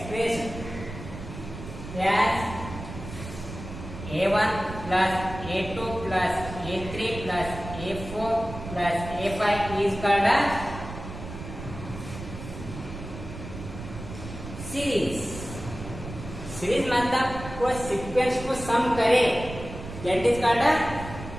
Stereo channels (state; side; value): noise; right; rumble, 11 dB below the sound